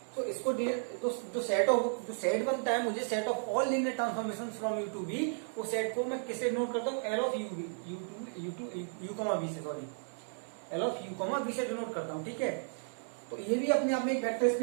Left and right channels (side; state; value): left; silent; 55 dB below the other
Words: so इसको जो सेट बनता है मुझे set of all linear transformation from U to V, वो सेट को मैं किससे नोट करता हूँ, L of U comma V से, sorry L of U comma V से डिनोट करता हूँ. ठीक है, तो ये भी अपने आप में एक वेक्टर